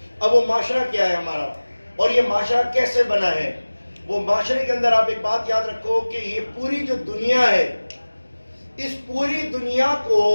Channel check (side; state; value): both; inverted; correlation -1.00